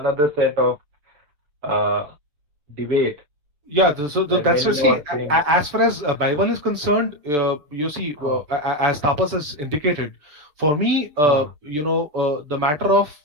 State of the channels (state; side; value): late; left; 6.8 ms